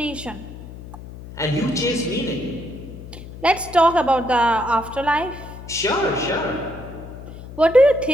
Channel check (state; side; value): noise; left; hum, 14 dB below the sound